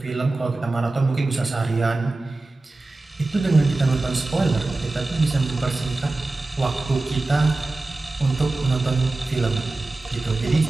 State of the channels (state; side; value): quieter; left; 3.1 dB